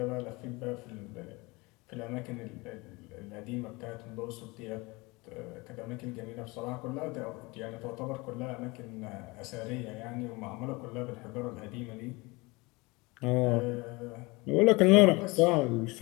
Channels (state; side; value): quieter; right; 24.6 dB